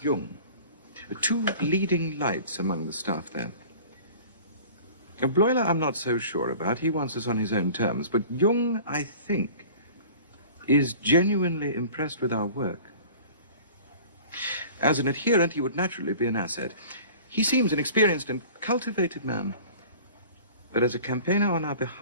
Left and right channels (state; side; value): inverted; both; correlation -0.43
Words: Jung. 2 leading lights among the staff there. Bleuler I'm not so sure about. He wants us on his own terms. But Jung, I think, is genuinely impressed with our work. As an adherent, he would naturally be an asset. He seems an experienced and cultivated man. But as a campaigner on our